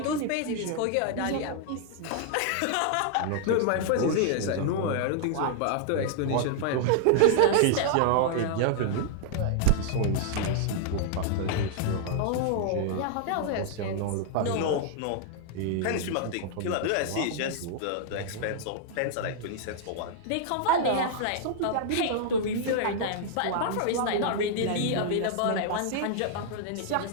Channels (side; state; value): both; different; correlation -0.01